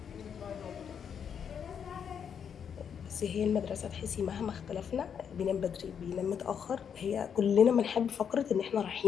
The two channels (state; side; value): quieter; right; 7.6 dB